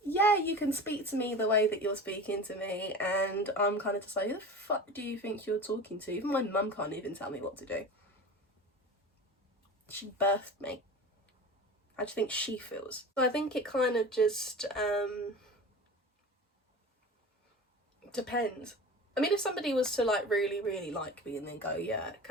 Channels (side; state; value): both; normal; correlation 0.33